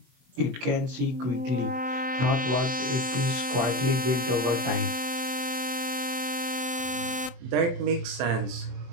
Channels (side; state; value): left; late; 24 ms